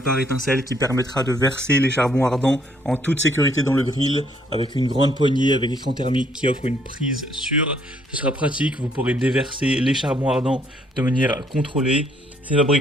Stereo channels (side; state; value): both; normal; correlation 0.67